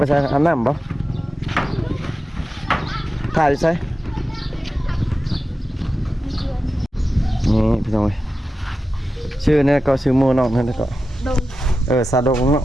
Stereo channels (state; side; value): normal; both; correlation 0.92